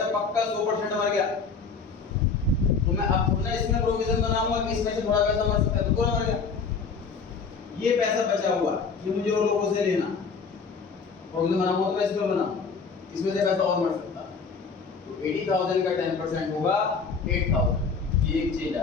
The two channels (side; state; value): right; quieter; 5.2 dB